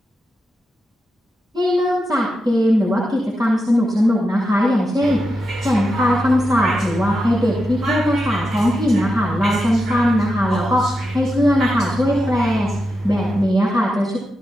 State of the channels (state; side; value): normal; both; correlation 0.88